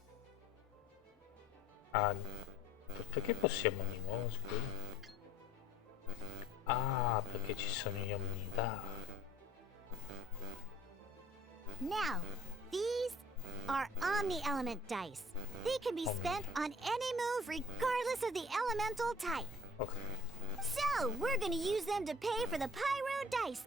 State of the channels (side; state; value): both; normal; correlation 0.51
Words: Ah, perché possiamo di nuovo, scusa? Ah, perché ci sono gli omnidà. Now, these are Omni-Element dice. They can be spent on any move regardless of the elemental type. Ok. So, we're gonna use them to pay for the pyro dice